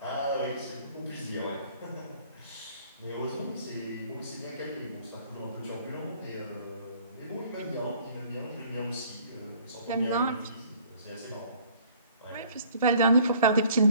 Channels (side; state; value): both; inverted; correlation -0.58